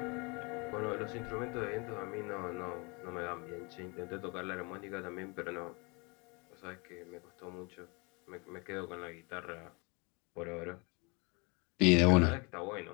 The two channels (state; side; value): quieter; right; 29.7 dB